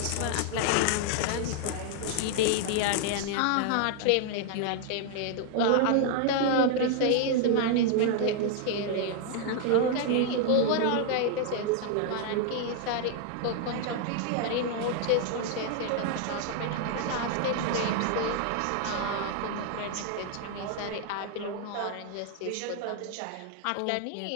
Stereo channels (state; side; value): different; both; correlation 0.00